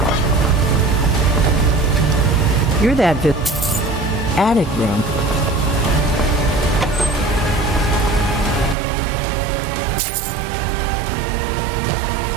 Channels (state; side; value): drops out; left; at 8.8 s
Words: You're that attic room.